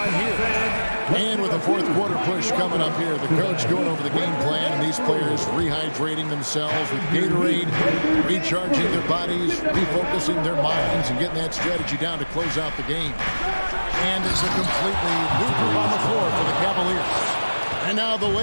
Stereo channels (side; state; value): both; inverted; correlation -1.00